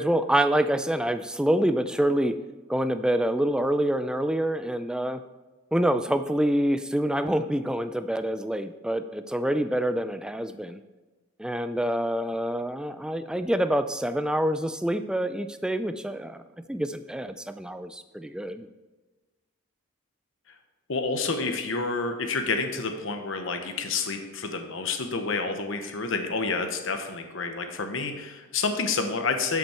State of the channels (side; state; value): both; normal; correlation 0.68